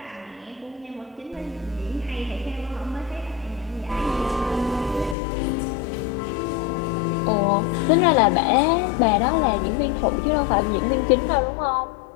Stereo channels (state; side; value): drops out; right; at 5.2 s